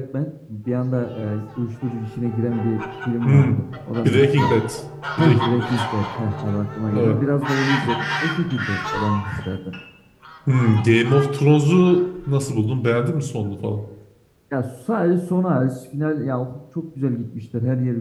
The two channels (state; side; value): identical; both; correlation 1.00